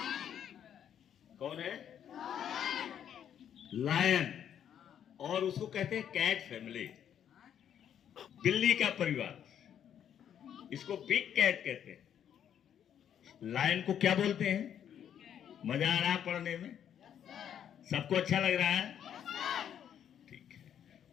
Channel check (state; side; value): quieter; right; 9.3 dB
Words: कौन है? लायन। और उसको कहते हैं कैट फैमिली, बिल्ली का परिवार। इसको बिग कैट कहते हैं। लायन को क्या बोलते हैं? मजा आ रहा है पढ़ने में? सबको अच्छा लग रहा है? ठीक है।